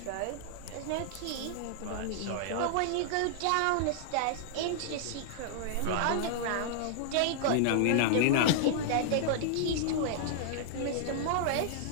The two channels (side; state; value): both; different; correlation -0.01